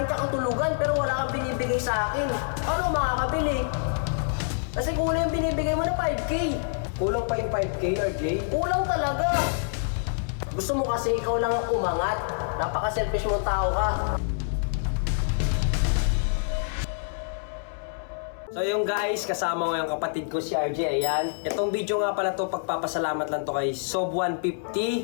kakatulugan pero wala kang binibigay sa akin. Paano ako makakabili? Kasi kulang yung binibigay mo na 5K. Kulang pa yung 5K, RJ? Kulang talaga. Gusto mo kasi ikaw lang ang umangat. Napaka-selfish mong tao ka. So yung guys, kasama ko yung kapatid ko si RJ, ayan. Itong video nga pala to, pagpapasalamat lang to kay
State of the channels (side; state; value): right; silent; 60 dB below the other